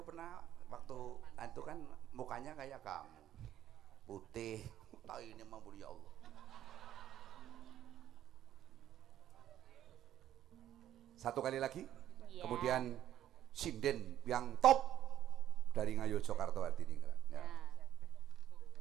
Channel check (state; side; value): quieter; left; 11.7 dB